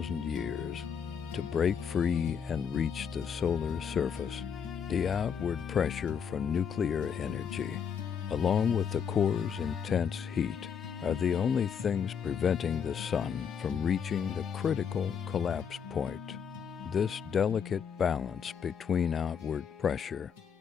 years to break free and reach the solar surface. The outward pressure from nuclear energy, along with the core's intense heat, are the only things preventing the sun from reaching the critical collapse point. This delicate balance between outward pressure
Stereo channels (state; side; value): quieter; right; 7.2 dB